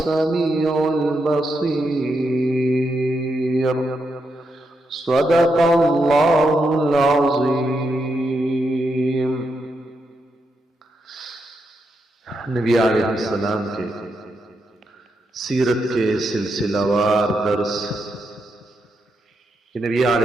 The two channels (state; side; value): normal; both; correlation 0.83